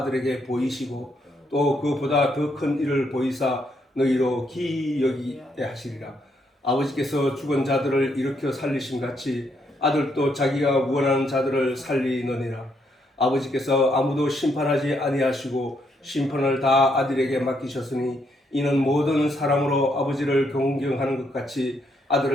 보이시고 또 그보다 더 큰 일을 보이사 너희로 기이 여기게 하시리라. 아버지께서 죽은 자들을 일으켜 살리심 같이 아들도 자기가 원하는 자들을 살리느니라. 아버지께서 아무도 심판하지 아니하시고 심판을 다 아들에게 맡기셨으니 이는 모든 사람으로 아버지를 공경하는 것 같이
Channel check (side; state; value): both; normal; correlation 0.75